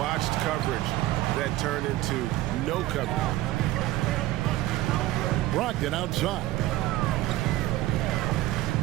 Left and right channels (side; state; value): left; quieter; 16.2 dB